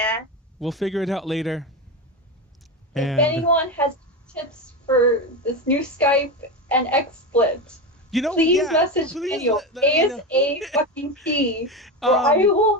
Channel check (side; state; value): both; normal; correlation 0.18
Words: We'll figure it out later. If anyone has tips for this new Skype and XSplit, please message Daniel ASAP, or I